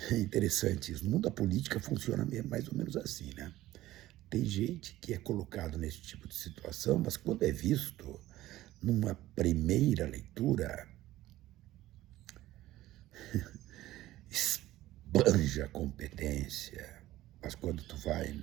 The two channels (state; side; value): quieter; left; 15.6 dB